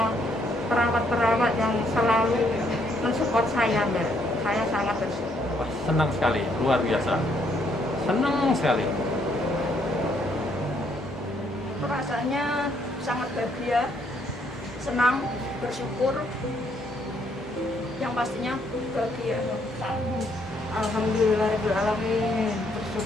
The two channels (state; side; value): normal; both; correlation 0.70